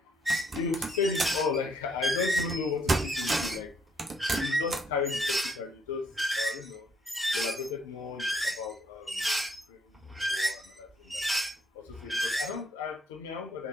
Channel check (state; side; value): normal; both; correlation 0.69